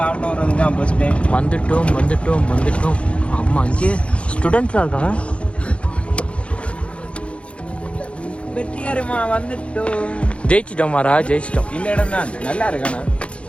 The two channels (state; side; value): late; right; 0.060 ms